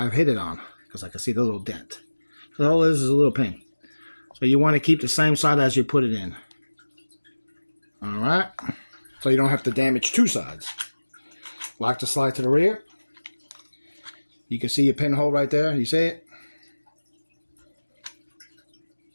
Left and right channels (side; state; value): both; inverted; correlation -1.00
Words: hit it on because I can see the little dent. So all this is a little pin. So you want to keep the same side as you put it in. Alright, so you don't have to damage two sides. Lock the slide to the rear. You can see your pinhole right there. You see it?